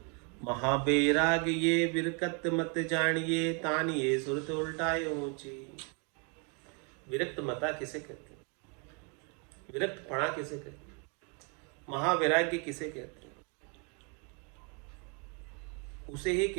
महाबैराग ये विरकत मत जानिए, तानिए सुरत उल्टाए ऊंची। विरक्त मता किसे कहते हैं? विरक्त पणा किसे कहते हैं? महावैराग्य किसे कहते हैं? उसे ही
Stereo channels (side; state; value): left; quieter; 36.0 dB